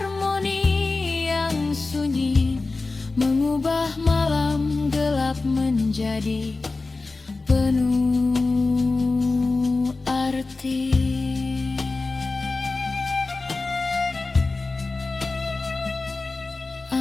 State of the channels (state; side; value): quieter; right; 3.6 dB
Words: yang sunyi, mengubah malam gelap menjadi penuh arti.